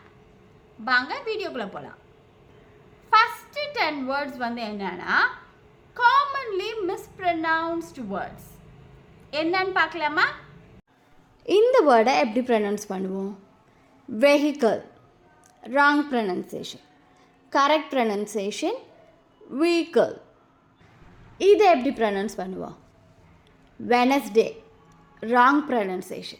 வாங்க வீடியோக்குள்ளே போகலாம். ஃபஸ்ட்டு 10 வேர்ட்ஸ் என்னென்னா காமன்லி மிஸ்ப்ரனவுன்ஸ்டு வேர்ட்ஸ். என்னன்னு பார்க்கலாமா? இந்த வேர்டை எப்படி ப்ரொனவுன்ஸ் பண்ணுவோம்? Vehicle, wrong pronunciation. Correct pronunciation vehicle. இதை எப்படி ப்ரொனவுன்ஸ் பண்ணுவோம்? Wednesday, wrong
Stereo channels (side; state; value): both; identical; correlation 1.00